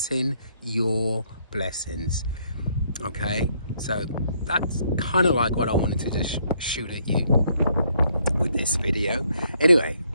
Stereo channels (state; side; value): inverted; both; correlation -0.69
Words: your blessings. Okay, so that's kind of like what I wanted to just shoot at you with this video. Anyway,